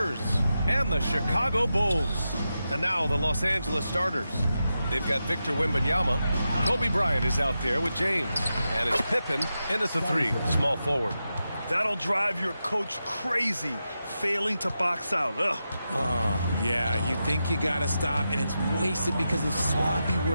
and the Chicago Bulls. And now the Los Angeles starters. They've got Victor Wembanyama. Kobe Bryant is out there with James. And it's Pippen in at the 3, small forward. That'll drive your coach crazy, failing to box out. Ugh. Oh, yeah, you think you got to stop, and it's wasted because of sloppy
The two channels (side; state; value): both; inverted; correlation -0.89